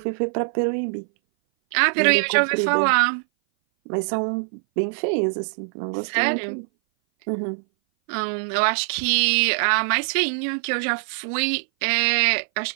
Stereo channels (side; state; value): left; silent; 59 dB below the other